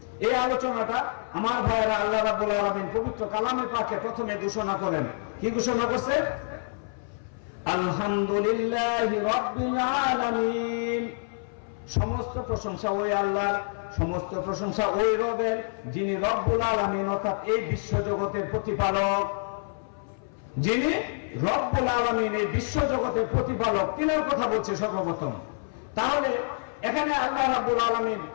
এই আলোচনাটা আমার ভাইয়েরা, আল্লাহ রাব্বুল আলামিন পবিত্র কালামে পাকে প্রথমে ঘোষণা করেন। কি ঘোষণা করছে? আলহামদুলিল্লাহি রাব্বিল আলামিন। সমস্ত প্রশংসা ওই আল্লাহর, সমস্ত প্রশংসা ওই রবের, যিনি রব্বুল আলামিন, অর্থাৎ এই বিশ্ব জগতের প্রতিপালক। যিনি রব্বুল আলামিন, এই বিশ্ব জগতের প্রতিপালক, তিনার কথা বলছে সর্বপ্রথম। তাহলে এখানে আল্লাহ রাব্বুল আলামিন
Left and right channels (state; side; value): silent; right; 57 dB below the other